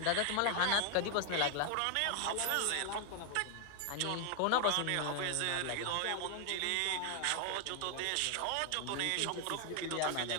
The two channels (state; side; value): different; both; correlation 0.00